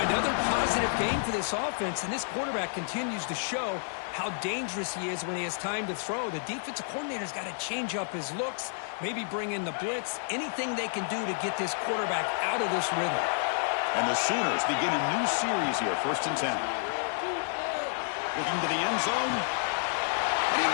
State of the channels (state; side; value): silent; right; digital silence